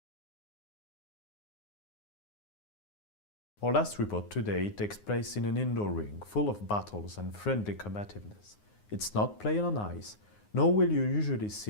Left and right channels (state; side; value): late; right; 9.6 ms